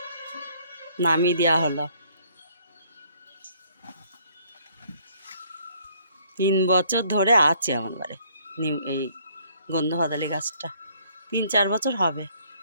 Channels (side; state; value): both; inverted; correlation -0.63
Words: নামিয়ে দেওয়া হলো। 3 বছর ধরে আছে আমার বাড়ি এই গন্ধ হতালি গাছটা, 3-4 বছর হবে।